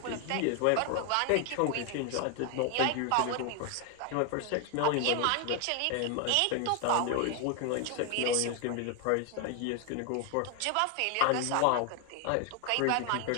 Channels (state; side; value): different; both; correlation 0.01